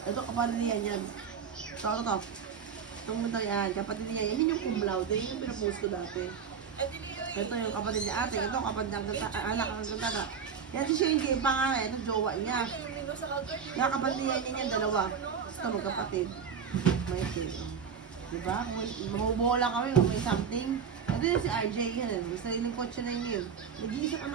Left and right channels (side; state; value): left; quieter; 6.8 dB